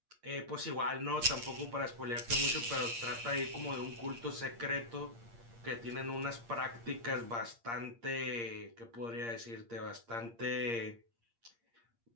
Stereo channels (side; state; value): left; late; 8.6 ms